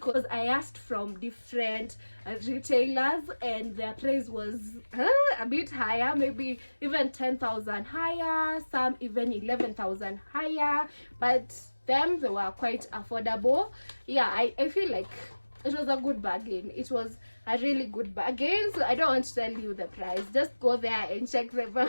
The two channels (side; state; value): both; inverted; correlation -1.00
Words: I asked from different retailers and their price was a bit higher, maybe even 10,000 higher, some even 11,000 higher, but them, they were quite affordable. Yeah, I feel like it was a good bargain. It was a really good bargain. So I don't want to tell you the price. Just go there and check them